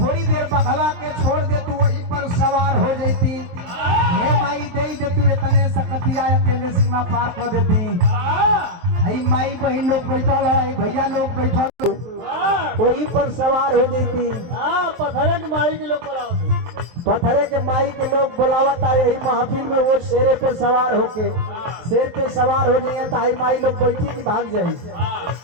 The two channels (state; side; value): late; left; 23 ms